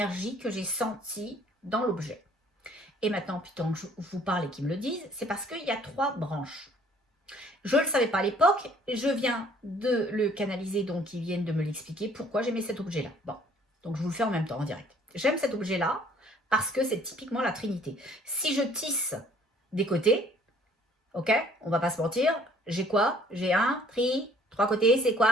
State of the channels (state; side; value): normal; both; correlation 0.58